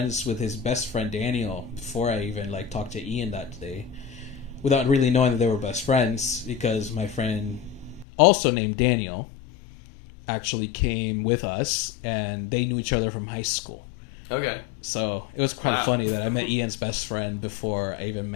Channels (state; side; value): drops out; right; at 8.1 s